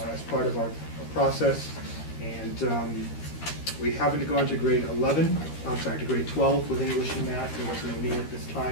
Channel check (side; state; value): right; late; 13 ms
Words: as part of our process. And we haven't gone to grade 12 with English and math. There wasn't a need at this